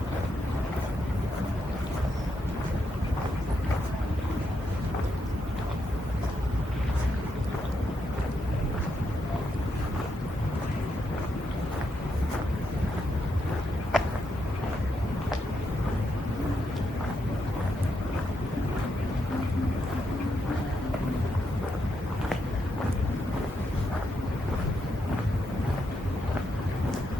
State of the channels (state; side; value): normal; both; correlation 0.81